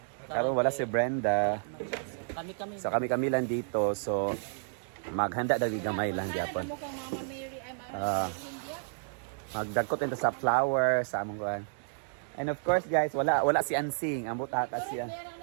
Karon wala si Brenda. Kami-kami. So kami lang dito. So maghanda dali gamay lang gyapon. Magdagkot into sa flower sa among kuan. And of course guys, wala si Ansing. Ambot ata siya.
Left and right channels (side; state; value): left; silent; digital silence